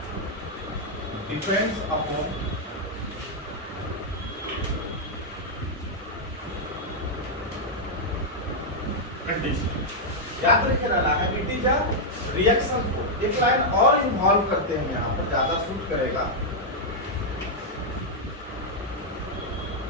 depends upon condition. याद रखे रहना है it is a reaction force. एक लाइन और इन्वॉल्व करते हैं यहाँ पर, ज्यादा सूट करेगा।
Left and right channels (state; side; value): normal; both; correlation -0.04